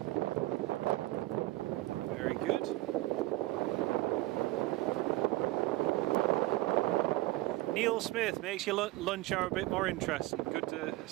Neil Smith makes your lunch hour a bit more interesting. Good to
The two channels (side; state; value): left; quieter; 18.5 dB